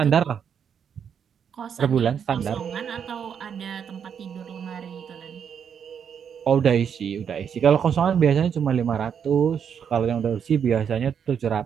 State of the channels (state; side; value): quieter; left; 7.7 dB